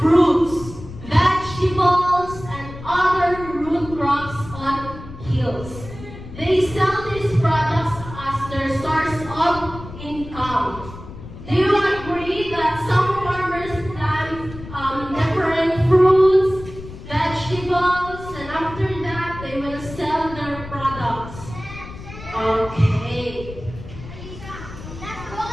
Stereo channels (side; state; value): left; noise; rumble, 13 dB below the sound